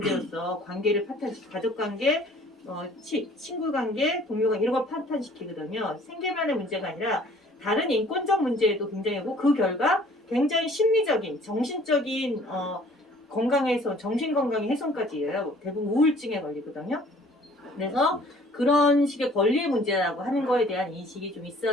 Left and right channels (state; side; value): normal; both; correlation 0.54